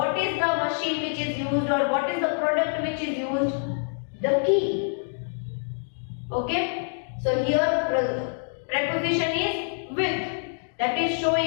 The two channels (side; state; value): right; silent; digital silence